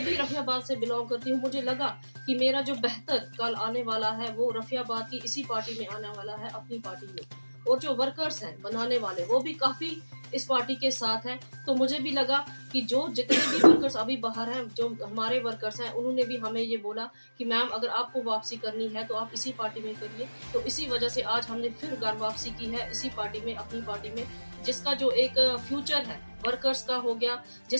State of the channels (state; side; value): inverted; both; correlation -1.00